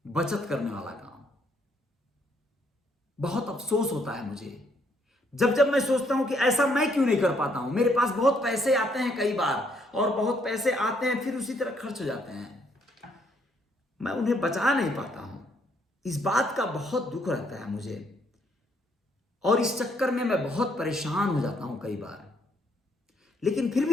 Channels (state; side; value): normal; both; correlation 0.70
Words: बचत करने वाला काम। बहुत अफसोस होता है मुझे जब मैं सोचता हूं कि ऐसा मैं क्यों नहीं कर पाता हूं। मेरे पास बहुत पैसे आते हैं कई बार, और बहुत पैसे आते हैं फिर उसी तरह खर्च हो जाते हैं, मैं उन्हें बचा नहीं पाता हूं। इस बात का बहुत दुख रहता है मुझे, और इस चक्कर में मैं बहुत परेशान हो जाता हूं कई बार, लेकिन फिर